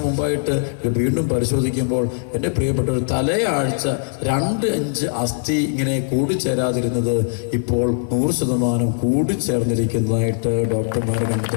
മുമ്പായിട്ട് വീണ്ടും പരിശോധിക്കുമ്പോൾ എൻ്റെ പ്രിയപ്പെട്ട തലയാഴ്ച 2 ഇഞ്ച് അസ്ഥി ഇങ്ങനെ കൂടിച്ചേരാതിരുന്നത് ഇപ്പോൾ 100% കൂടിച്ചേർന്നിരിക്കുന്നതായിട്ട് ഡോക്ടർമാർ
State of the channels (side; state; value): right; silent; 57 dB below the other